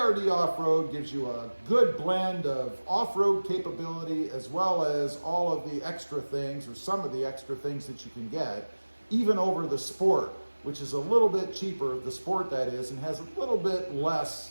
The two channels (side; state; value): both; inverted; correlation -1.00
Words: Off-Road gives you a good blend of off-road capability as well as all of the extra things, or some of the extra things that you can get, even over the Sport, which is a little bit cheaper, the Sport that is, and has a little bit